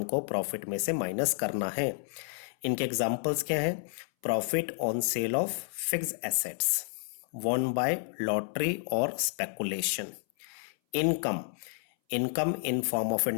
को प्रॉफिट में से माइनस करना है। इनके एग्जांपल्स क्या हैं? Profit on sale of fixed assets, won by lottery और speculation. Income in form of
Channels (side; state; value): right; silent; 57 dB below the other